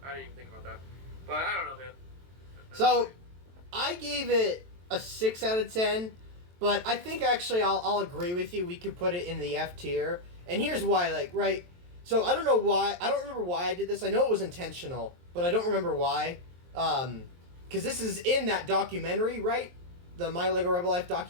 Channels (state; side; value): late; left; 23 ms